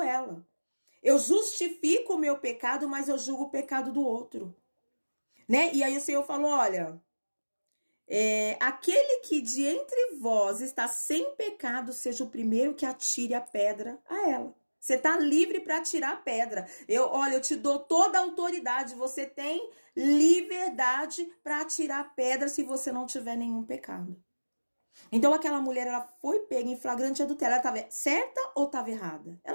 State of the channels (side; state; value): both; inverted; correlation -1.00